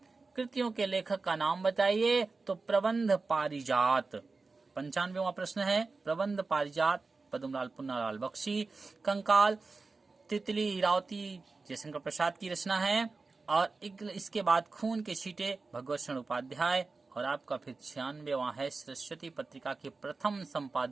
कृतियों के लेखक का नाम बताइए। तो प्रबंध पारिजात। 95वां प्रश्न है प्रबंध पारिजात पद्मलाल पुन्नालाल बख्शी। कंकाल तितली इरावती जयशंकर प्रसाद की रचना है। और इसके बाद खून के छींटे भगवत शरण उपाध्याय। और आपका फिर 96वां है सरस्वती पत्रिका के प्रथम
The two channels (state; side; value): quieter; left; 4.0 dB